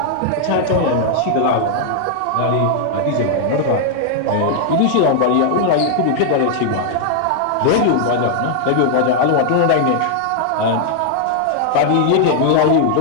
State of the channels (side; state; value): both; different; correlation -0.01